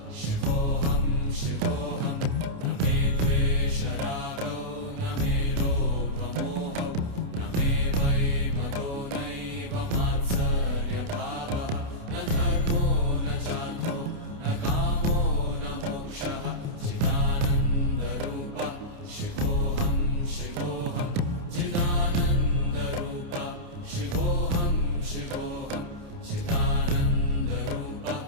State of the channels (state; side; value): late; left; 29 ms